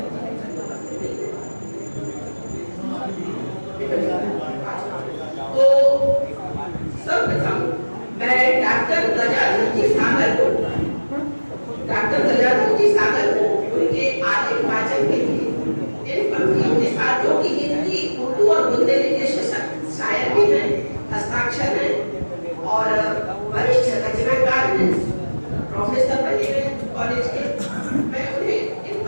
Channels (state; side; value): inverted; both; correlation -1.00